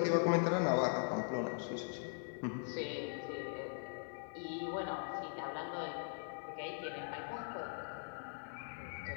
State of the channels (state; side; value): silent; right; digital silence